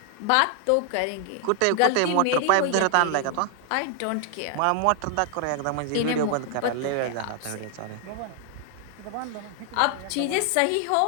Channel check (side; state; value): both; different; correlation 0.00